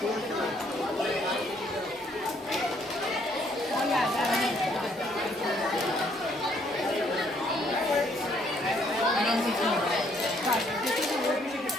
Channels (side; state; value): both; normal; correlation 0.67